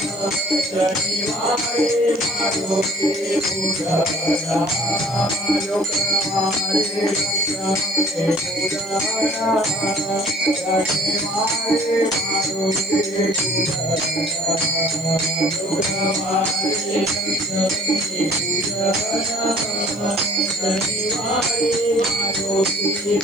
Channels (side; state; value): left; noise; hiss, 27 dB below the sound